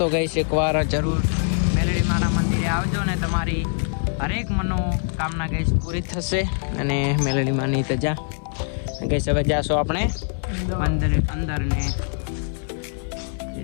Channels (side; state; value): right; silent; digital silence